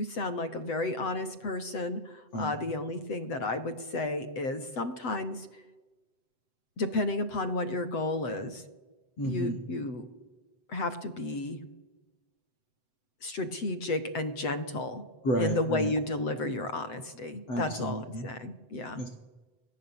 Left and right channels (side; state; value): right; late; 7.9 ms